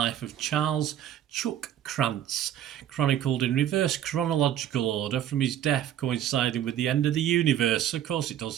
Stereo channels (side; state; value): left; quieter; 10.9 dB